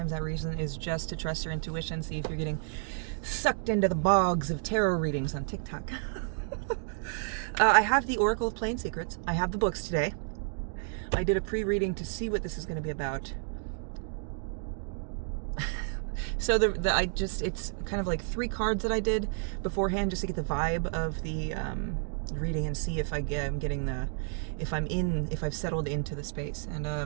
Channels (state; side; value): silent; left; digital silence